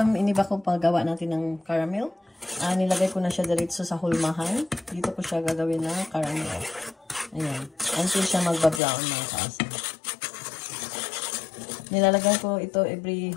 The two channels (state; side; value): drops out; right; at 8.8 s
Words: iniba ko paggawa natin ng caramel. Nilagay ko na siya diretso sa hulmahan. Dito ko siya gagawin na caramel. Ayan. Until siya magba-brown mga kaasam. Nilalagyan ko ito every